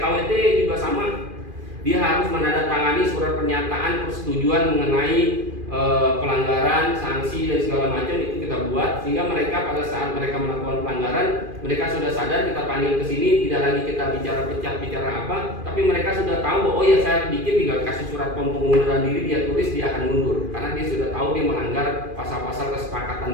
juga sama, dia harus menandatangani surat pernyataan persetujuan mengenai pelanggaran, sanksi dan segala macam itu kita buat sehingga mereka pada saat mereka melakukan pelanggaran mereka sudah sadar, kita panggil ke sini tidak lagi kita bicara apa, tapi mereka sudah tahu bahwa oh ya saya bikin tinggal kasih surat pengunduran diri, dia tulis dia akan mundur karena dia sudah tahu dia melanggar pasal-pasal kesepakatan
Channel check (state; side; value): late; left; 2.4 ms